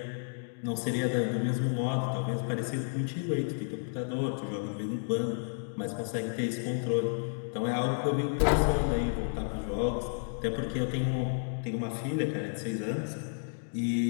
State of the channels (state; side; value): silent; right; digital silence